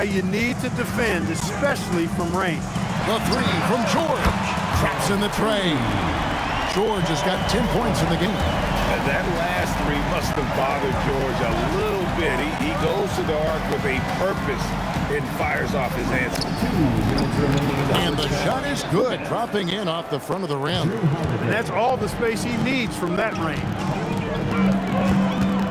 you need to defend, especially from range. The 3 from George. Traps in the tray. George has got 10 points in the game. And that last 3 must have bothered George a little bit. He goes to the arc with a purpose and fires off his answer. And the shot is good, dropping in off the front of the rim. And that's all the space he needs from that range.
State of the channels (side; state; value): both; identical; correlation 1.00